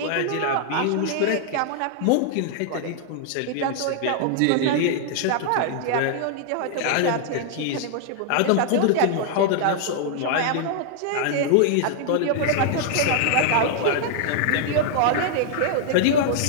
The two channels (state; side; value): different; both; correlation -0.01